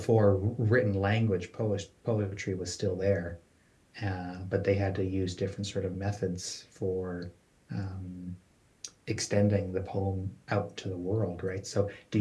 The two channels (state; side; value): identical; both; correlation 1.00